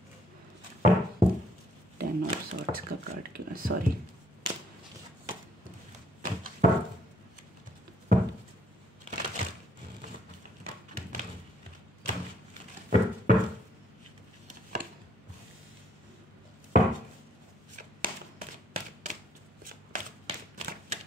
10 ऑफ सॉर्ट्स का कार्ड क्यों, सॉरी,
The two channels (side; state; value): both; normal; correlation 0.67